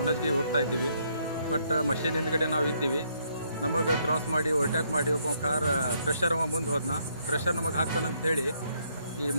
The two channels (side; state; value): both; inverted; correlation -0.72